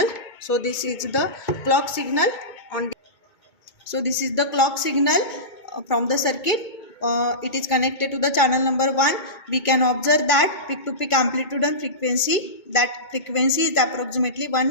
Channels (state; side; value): late; right; 2.2 ms